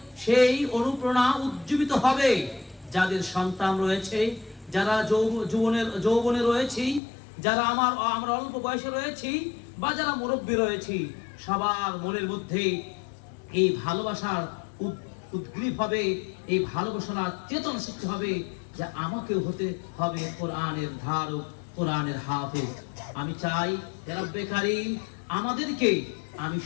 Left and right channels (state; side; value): drops out; right; at 7.0 s